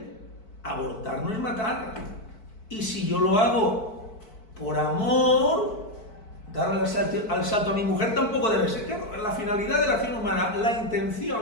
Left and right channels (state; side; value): late; right; 4.5 ms